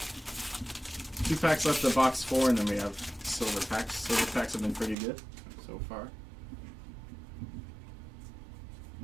2 packs left of box 4, and then we have silver packs. Silver packs have been pretty good so far.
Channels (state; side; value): drops out; left; at 5.0 s